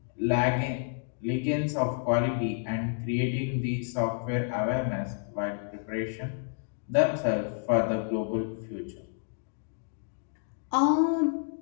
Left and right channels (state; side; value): silent; right; digital silence